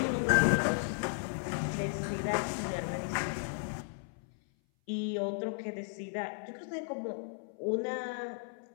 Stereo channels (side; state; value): right; silent; 55 dB below the other